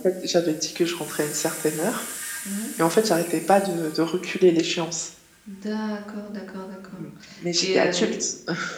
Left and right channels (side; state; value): both; identical; correlation 1.00